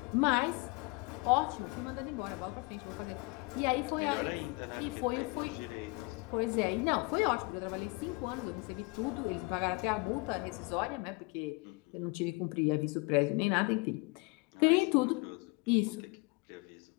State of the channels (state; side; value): quieter; right; 27.3 dB